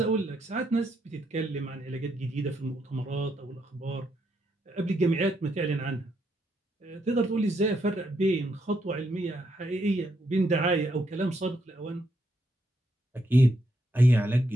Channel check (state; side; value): normal; both; correlation 0.77